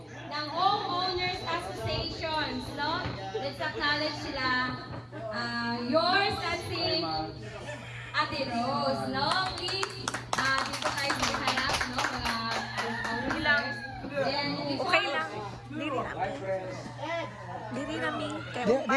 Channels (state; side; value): identical; both; correlation 1.00